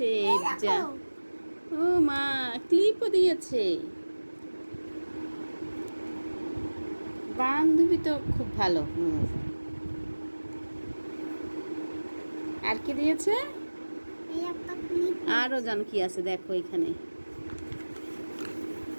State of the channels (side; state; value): both; inverted; correlation -1.00